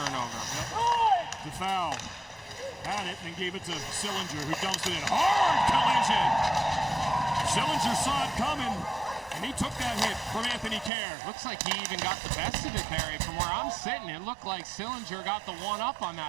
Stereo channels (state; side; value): drops out; left; at 10.9 s